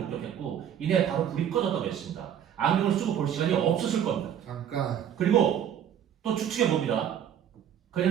목격했고 이내 바로 불이 꺼졌다고 했습니다. 안경을 쓰고 볼 시간이 없었을 겁니다. 잠깐. 그리고 또 추측해 봅니다.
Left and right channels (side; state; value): left; quieter; 9.5 dB